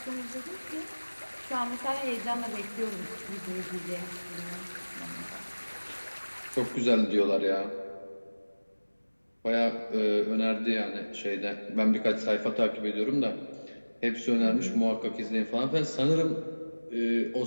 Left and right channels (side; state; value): both; inverted; correlation -1.00